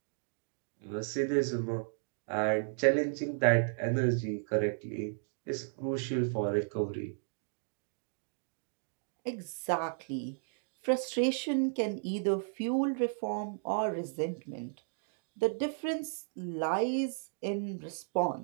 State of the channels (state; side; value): silent; left; digital silence